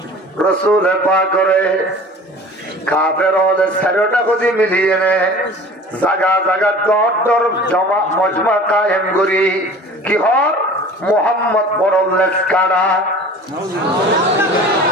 রসুল পাক করে কাফের হলে সারোটা খুদি মিলিয়ে নে জাগা জাগা দর জমা মজমা কায়েম করি কি হর মোহাম্মদ পরলেস কারা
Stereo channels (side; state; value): both; normal; correlation 0.42